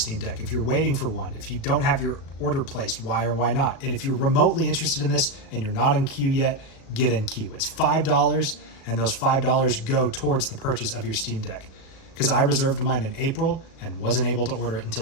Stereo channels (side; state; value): right; late; 37 ms